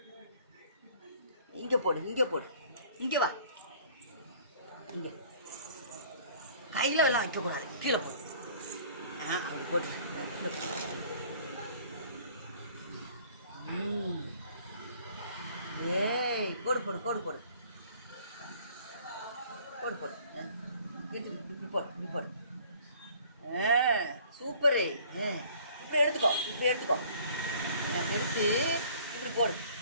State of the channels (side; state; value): both; inverted; correlation -0.54